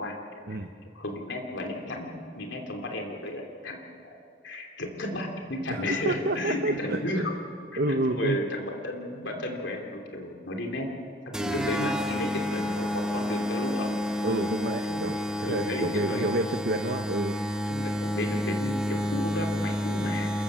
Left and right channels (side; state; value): both; normal; correlation 0.53